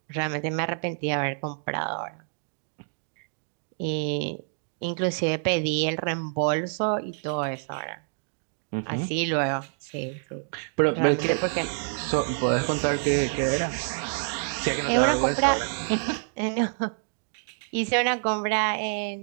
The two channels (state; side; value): silent; left; digital silence